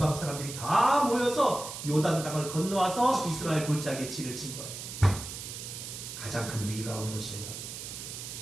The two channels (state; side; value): noise; right; hiss, 9 dB below the sound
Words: 사람들이 다 모여서 요단강을 건너와서 이스라엘 골짜기에 진을 친 거예요. 가장 큰 위기가 온 것이에요.